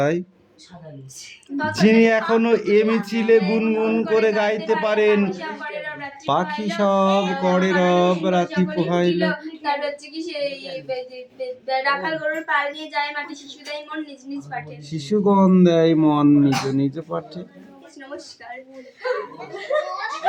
যিনি এখনো এ মিছিলে গুনগুন করে গাইতে পারেন, পাখি সব করে রব রাতি পোহাইল। তার হচ্ছে কি সেই রাখাল গরুর পাল নিয়ে যায় মাটি, শিশু দেয় মন নিজ নিজ পাঠে, শিশুগণ দেয় মন নিজ নিজ পাঠে। নমস্কার।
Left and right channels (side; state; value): both; identical; correlation 1.00